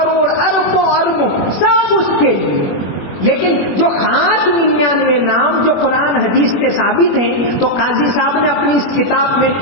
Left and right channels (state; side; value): late; right; 21 ms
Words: اربوں سب اس کے لیے، لیکن جو خاص 99 نام جو قرآن حدیث سے ثابت ہیں، تو قاضی صاحب نے اپنی اس کتاب میں